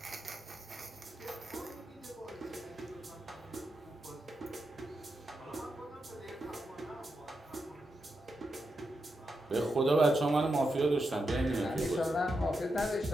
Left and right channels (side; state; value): both; normal; correlation 0.86